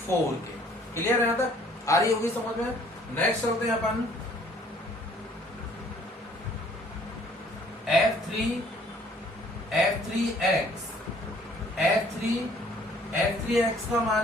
के। क्लियर है यहाँ तक, आ रही होगी समझ में। नेक्स्ट चलते हैं अपन f3x का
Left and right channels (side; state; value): both; normal; correlation 0.59